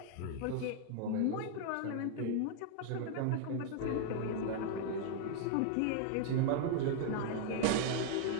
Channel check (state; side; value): different; both; correlation 0.00